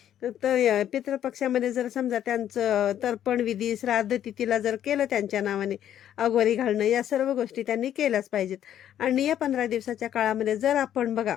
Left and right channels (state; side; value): quieter; right; 10.7 dB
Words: तर पितृपक्षामध्ये जर समजा त्यांचं तर्पण विधी, श्राद्ध तिथीला जर केलं त्यांच्या नावाने, अघोरी घालणं, या सर्व गोष्टी त्यांनी केल्याच पाहिजेत. आणि या 15 दिवसाच्या काळामध्ये जर आपण बघा